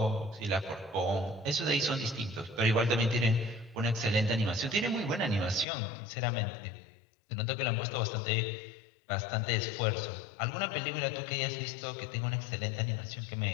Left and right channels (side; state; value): right; drops out; at 5.7 s